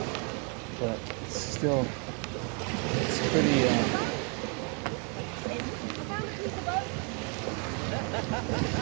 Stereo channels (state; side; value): quieter; left; 37.0 dB